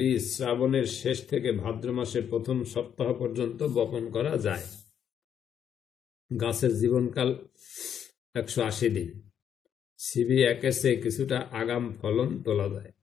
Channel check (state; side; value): quieter; right; 8.7 dB